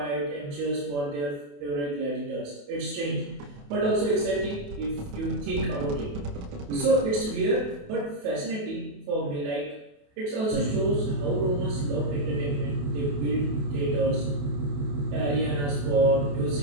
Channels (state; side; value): late; left; 28 ms